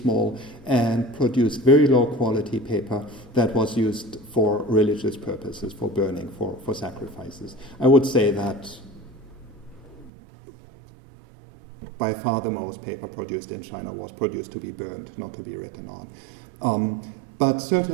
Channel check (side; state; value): left; drops out; at 10.1 s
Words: and produced very low quality paper that was used for religious purposes, for burning, for sacrifices. I would say that by far the most paper produced in China was produced to be burned, not to be written on. But